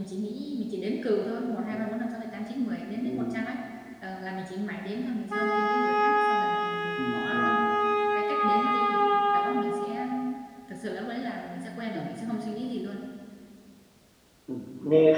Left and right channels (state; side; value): identical; both; correlation 1.00